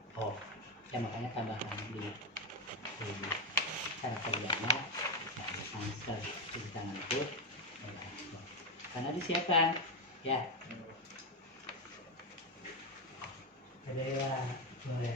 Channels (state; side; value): normal; both; correlation 0.07